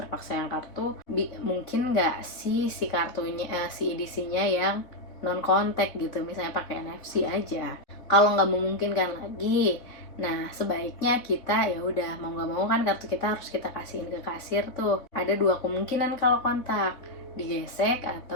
yang kartu, mungkin nggak si kartunya, si edisinya yang non kontak gitu, misalnya pakai NFC aja. Kalau nggak memungkinkan lagi, nah sebaiknya kita ya udah mau nggak mau kan kartu kita harus kita kasihin ke kasir tuh. Ada dua kemungkinan kalau kontak, digesek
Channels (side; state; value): right; late; 4.0 ms